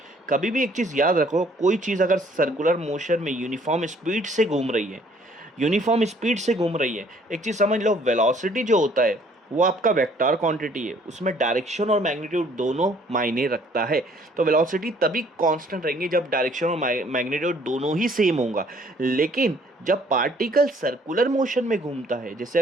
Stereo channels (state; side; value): normal; both; correlation 0.60